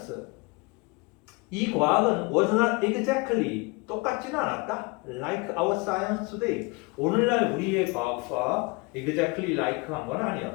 이 과학은 was not exactly, 똑같지는 않았다. Like our science today. 오늘날 우리의 과학과 exactly like 한 건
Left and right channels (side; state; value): right; quieter; 27.1 dB